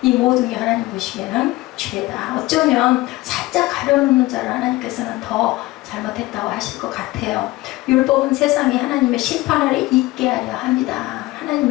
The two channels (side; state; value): right; quieter; 19.1 dB